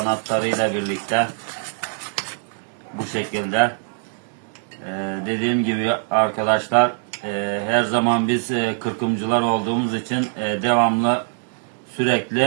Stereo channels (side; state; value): left; silent; digital silence